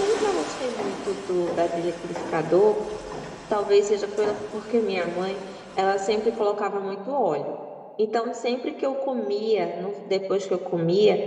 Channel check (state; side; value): identical; both; correlation 1.00